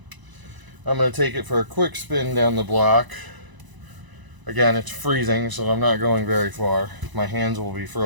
I'm going to take it for a quick spin down the block. Again, it's freezing, so I'm not going very far. My hands will be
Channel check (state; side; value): late; left; 1.0 ms